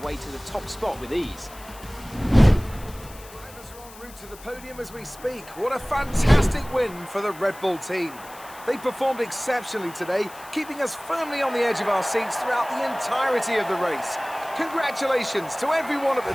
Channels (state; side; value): noise; left; hiss, 19 dB below the sound